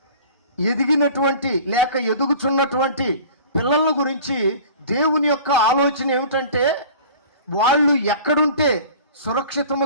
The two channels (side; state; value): both; inverted; correlation -0.43